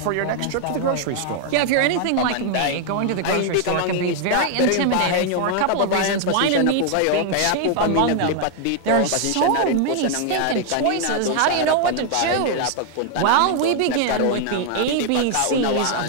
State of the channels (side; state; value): both; different; correlation 0.00